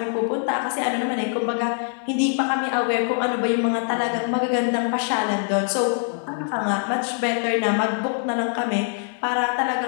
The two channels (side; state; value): right; silent; 57 dB below the other